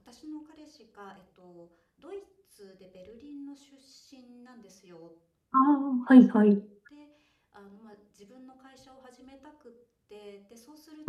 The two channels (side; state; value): both; identical; correlation 1.00